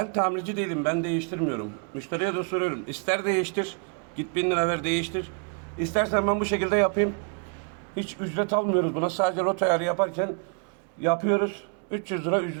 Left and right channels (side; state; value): left; quieter; 39.7 dB